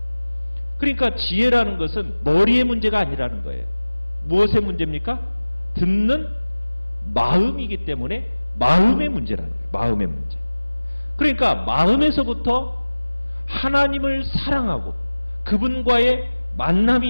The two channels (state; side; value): inverted; both; correlation -1.00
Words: 그러니까 지혜라는 것은 머리의 문제가 아니라는 거예요. 무엇의 문제입니까? 듣는 마음이기 때문에 마음의 문제라는 거예요. 마음의 문제. 그러니까 마음에서부터 하나님을 사랑하고 그분과의 만남이